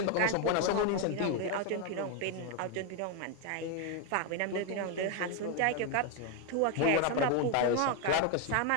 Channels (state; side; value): different; both; correlation 0.01